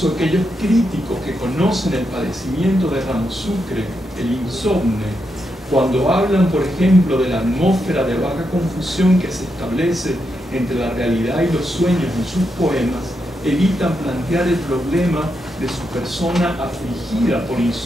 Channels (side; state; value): both; normal; correlation 0.83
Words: aquellos críticos que conocen el padecimiento de Ramos Sucre, el insomne, cuando hablan, por ejemplo, de la atmósfera de vaga confusión que se establece entre la realidad y los sueños en sus poemas, evitan plantear el problema de su persona afligida por